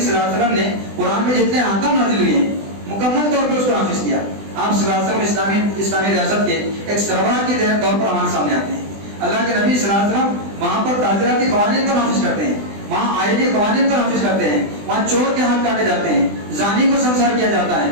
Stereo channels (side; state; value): left; late; 20 ms